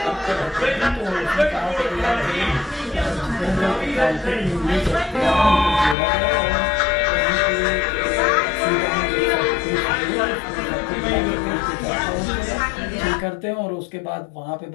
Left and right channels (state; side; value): drops out; right; at 6.0 s